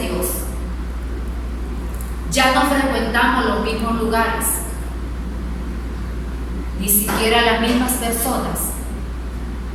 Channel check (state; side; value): identical; both; correlation 1.00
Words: Ya no frecuentamos los mismos lugares, ni siquiera las mismas personas,